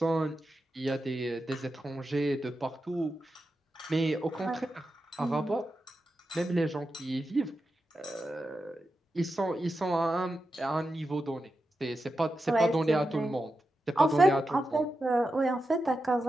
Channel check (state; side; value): normal; both; correlation 0.89